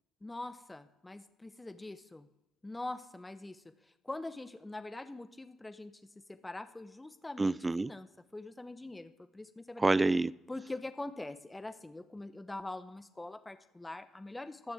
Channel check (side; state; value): both; normal; correlation 0.97